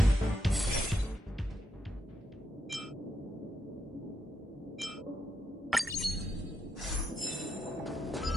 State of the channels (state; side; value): normal; both; correlation 0.82